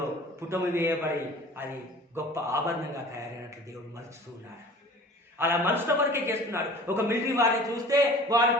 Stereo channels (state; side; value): normal; both; correlation 0.44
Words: పుటము వేయబడి అది గొప్ప ఆభరణంగా తయారైనట్లు దేవుడు మలుచుతూ ఉన్నాడు. అలా మలుచడం వరకే చేస్తున్నాడు. ఒక మిలిటరీ వారిని చూస్తే వారు